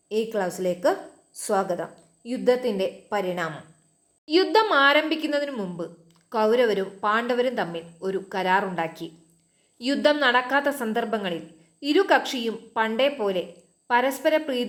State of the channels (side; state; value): both; identical; correlation 1.00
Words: ഈ ക്ലാസ്സിലേക്ക് സ്വാഗതം. യുദ്ധത്തിൻ്റെ പരിണാമം. യുദ്ധം ആരംഭിക്കുന്നതിന് മുമ്പ് കൗരവരും പാണ്ഡവരും തമ്മിൽ ഒരു കരാറുണ്ടാക്കി. യുദ്ധം നടക്കാത്ത സന്ദർഭങ്ങളിൽ ഇരു കക്ഷിയും പണ്ടേ പോലെ പരസ്പര